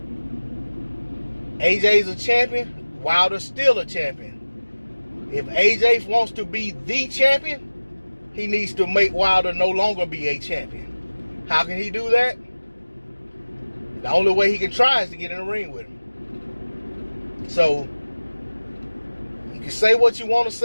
AJ's a champion, Wilder's still a champion. If AJ wants to be the champion, he needs to make Wilder no longer be a champion. How can he do that? The only way he can try is to get in the ring with him. So, you can say what you want to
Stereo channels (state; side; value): inverted; both; correlation -1.00